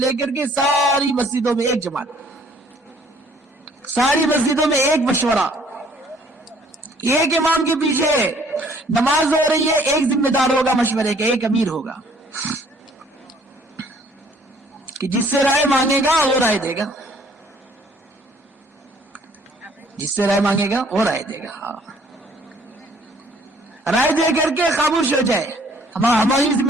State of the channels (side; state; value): both; normal; correlation 0.59